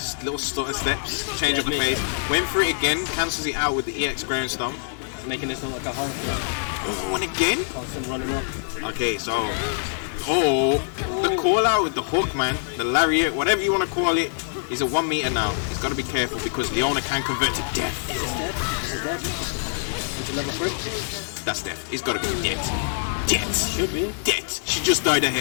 Little stutter steps. Change up the pace. Went for it again. Cancels it out with the EX ground stomp. Making this look like a horror film. Oh, and again? Constant running up. Okay, so the call out with the hook, man, the lariat, whatever you want to call it, is at 1 meter now. He's got to be careful because Leona can convert to death. Is it dead? Is it dead? Is it level 3? That's death. It's got to be dead. Dead. Should be. Dead. She just died of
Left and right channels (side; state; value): right; silent; digital silence